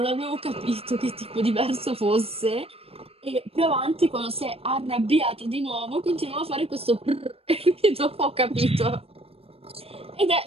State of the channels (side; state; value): left; late; 0.28 ms